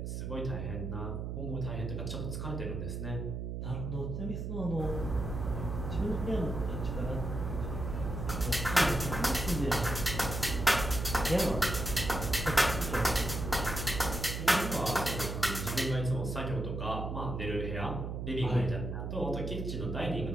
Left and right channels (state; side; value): noise; right; hum, 4 dB below the sound